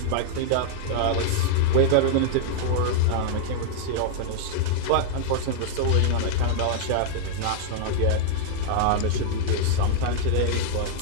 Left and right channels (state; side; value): different; both; correlation -0.01